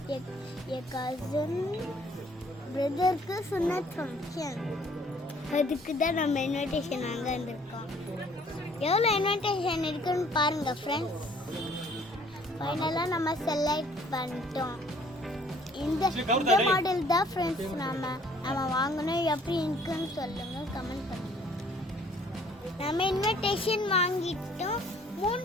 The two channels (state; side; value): normal; both; correlation 0.59